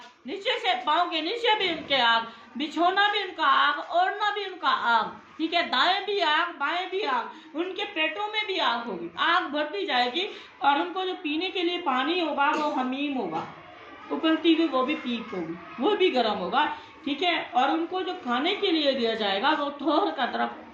नीचे से पाँव के नीचे भी उनके आग, बिछोना भी उनका आग, ओढ़ना भी उनका आग, ठीक है, दाएं भी आग बाएं भी आग, उनके पेटों में भी आग होगी, आग भरती जाएगी। और उनको जो पीने के लिए पानी होगा वो हमीम होगा, उबलती हुई वो भी पीप होगी, वो भी गर्म होगा। ठीक है, और उनको जो खाने के लिए दिया जाएगा वो थोर का तरफ,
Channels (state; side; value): identical; both; correlation 1.00